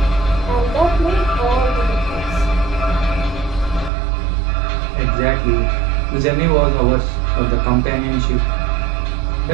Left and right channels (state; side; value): drops out; left; at 3.9 s